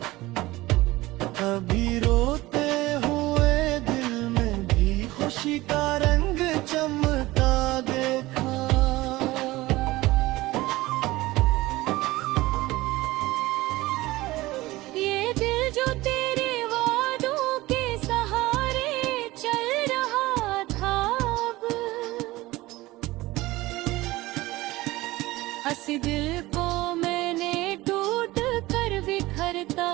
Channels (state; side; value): quieter; left; 18.9 dB